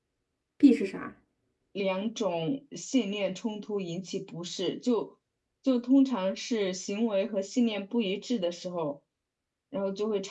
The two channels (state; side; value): identical; both; correlation 1.00